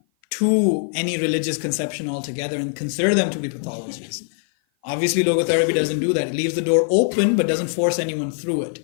to any religious conception altogether and consider them to be pathologies. Obviously, logotherapy doesn't do that. It leaves the door open but doesn't force anyone through it.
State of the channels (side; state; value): right; silent; 56 dB below the other